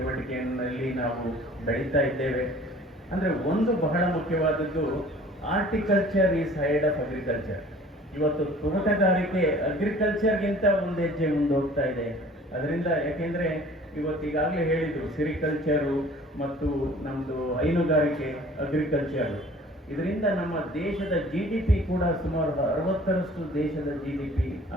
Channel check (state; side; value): normal; both; correlation 0.49